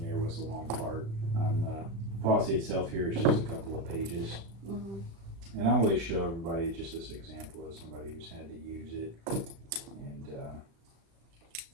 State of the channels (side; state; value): left; late; 36 ms